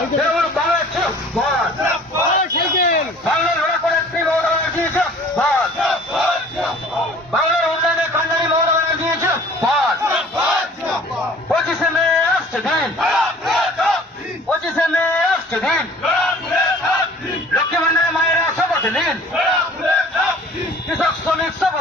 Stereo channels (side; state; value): both; normal; correlation 0.49